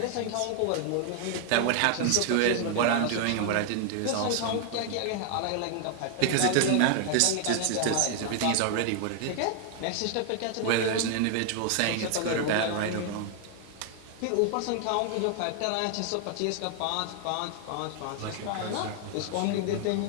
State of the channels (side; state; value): both; different; correlation 0.00